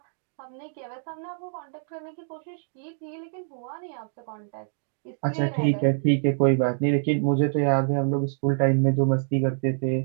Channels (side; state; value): left; silent; digital silence